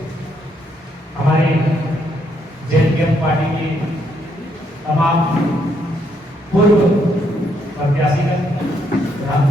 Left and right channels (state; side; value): normal; both; correlation 0.74